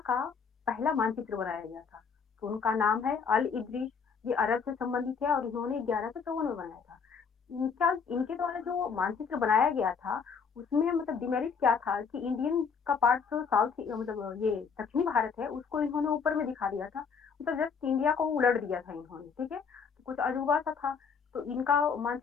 का पहला मानचित्र बनाया गया था। तो उनका नाम है अल इदरीस। ये अरब से संबंधित है और इन्होंने 1154 में बनाया था। इनका इनके द्वारा जो मानचित्र बनाया गया था उसमें मतलब डिमेरिट क्या था कि इंडियन का पार्ट जो साउथ मतलब ये दक्षिणी भारत है उसको इन्होंने ऊपर में दिखा दिया था, मतलब जस्ट इंडिया को उलट दिया था इन्होंने, ठीक है। तो कुछ अजूबा सा था, तो इनका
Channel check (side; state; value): right; quieter; 5.9 dB